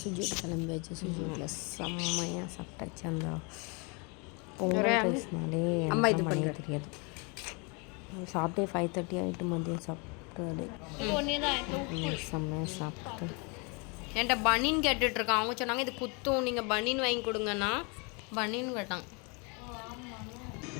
சுஜிட்டு கிளம்பியாச்சு. சுஜிட்டில் செம்மையாக சாப்பிட்டாச்சு. அந்த பொங்கல் ரைஸ்னாலே எனக்கு பண்ண தெரியாது. சாப்பிட்டே 5:30 ஆகிட்டு. மதியம் சாப்பிட்டு செம்மையாக சாப்பிட்டு என்கிட்ட பனின்னு கேட்டுட்ருக்கான். அவங்க சொன்னாங்க இது குத்தும், நீங்கள் பனின்னு வாங்கி கொடுங்கண்ணா. பனின்னு கேட்டாங்க.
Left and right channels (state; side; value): quieter; right; 32.1 dB